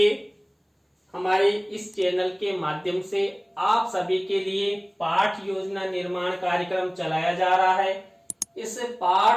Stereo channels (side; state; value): both; identical; correlation 1.00